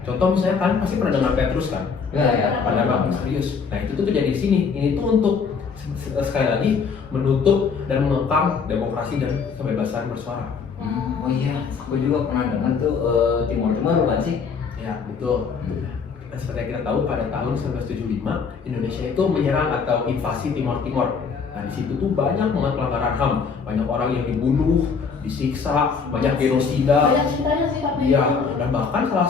Contoh misalnya kan pasti pernah dengar Petrus kan? Ya. Pada Bang Serius. Nah itu tuh terjadi di sini. Ini tuh untuk sekali lagi menutup dan mengekang demokrasi dan kebebasan bersuara. Oh iya, aku juga pernah dengar tuh Timur Tengah bukan sih? Ya betul. Dan seperti yang kita tahu pada tahun 1975 Indonesia itu menyerang atau invasi Timor Timor. Nah di situ tuh banyak banget pelanggaran HAM, banyak orang yang dibunuh, disiksa, banyak genosida. Banyak ceritanya sih tapi Iya, dan bahkan salah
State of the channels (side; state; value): right; quieter; 5.6 dB